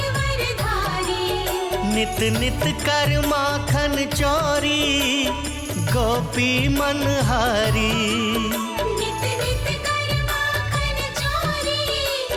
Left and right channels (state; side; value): identical; both; correlation 1.00